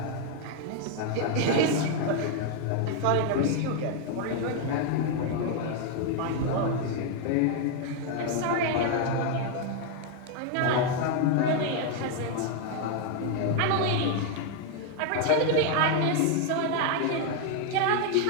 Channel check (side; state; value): both; different; correlation 0.00